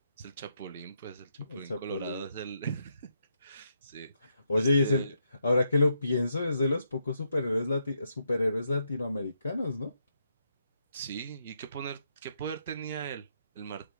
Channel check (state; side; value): inverted; both; correlation -0.79